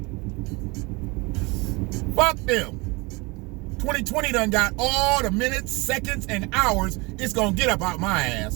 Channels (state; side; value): quieter; left; 26.2 dB